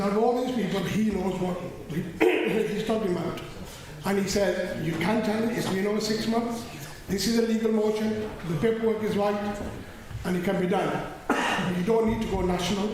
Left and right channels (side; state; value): both; identical; correlation 1.00